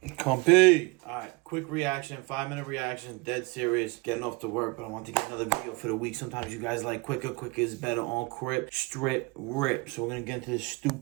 Compy. Alright, quick reaction, 5-minute reaction, dead serious, getting off to work, but I want to get another video for the week. Sometimes you guys like quicker is better on Crip, Strip, Rip. So we're gonna get into this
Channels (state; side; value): quieter; left; 26.6 dB